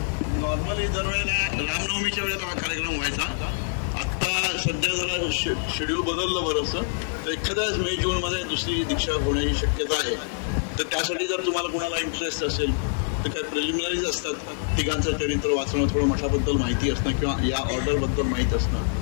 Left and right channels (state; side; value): silent; right; 60 dB below the other